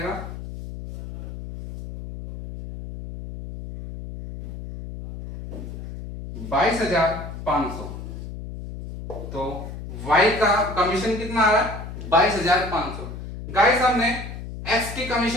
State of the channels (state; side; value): noise; left; hum, 10 dB below the sound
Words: 22,500। तो y का कमीशन कितना आ रहा है, 22,500। गाइस हमने x की